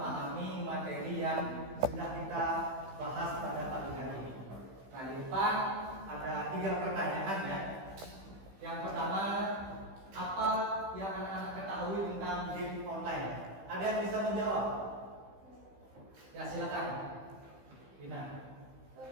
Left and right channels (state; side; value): late; left; 15 ms